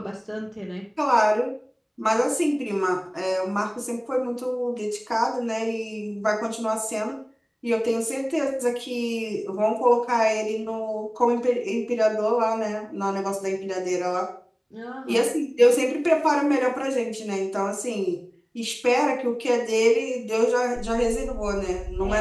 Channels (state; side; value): identical; both; correlation 1.00